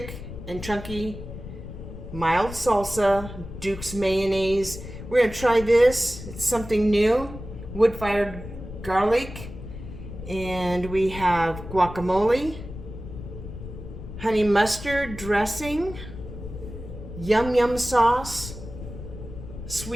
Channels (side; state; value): left; noise; rumble, 11 dB below the sound